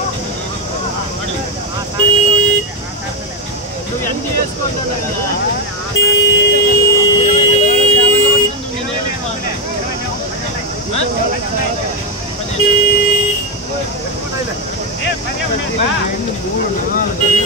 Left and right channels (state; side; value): normal; both; correlation 0.05